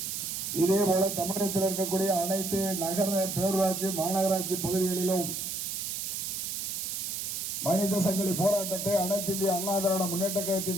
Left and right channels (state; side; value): noise; right; hiss, 3 dB below the sound